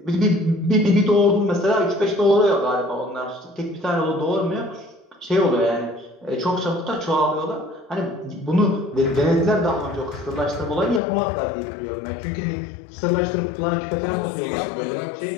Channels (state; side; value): drops out; right; at 11.0 s